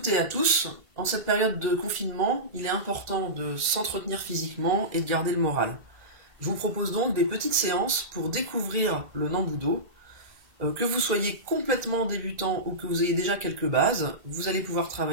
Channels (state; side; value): late; left; 2.0 ms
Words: et à tous. En cette période de confinement, il est important de s'entretenir physiquement et de garder le moral. Je vous propose donc des petites séances pour découvrir le Nambudo. Que vous soyez complètement débutant ou que vous ayez déjà quelques bases, vous allez pouvoir